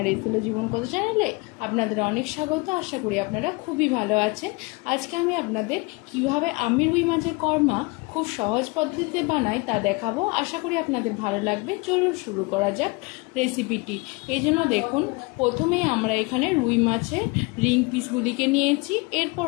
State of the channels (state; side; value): quieter; right; 26.8 dB